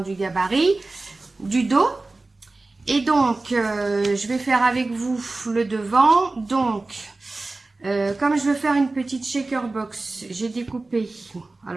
du gabarit, du dos. Et donc je vais faire avec vous le devant. Donc comme je veux faire une petite shaker box, j'ai découpé.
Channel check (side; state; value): left; quieter; 3.3 dB